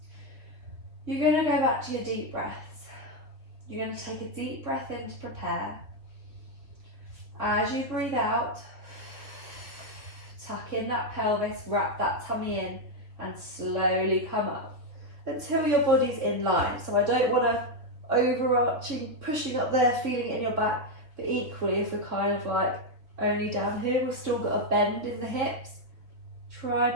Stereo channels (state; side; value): late; left; 3.7 ms